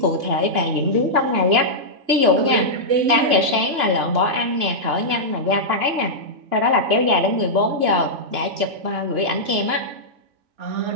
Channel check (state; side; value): late; left; 2.9 ms